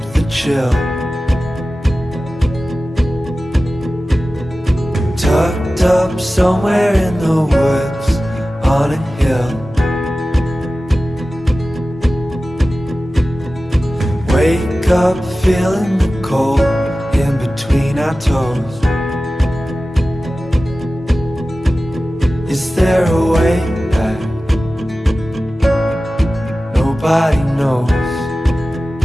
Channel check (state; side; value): normal; both; correlation 0.95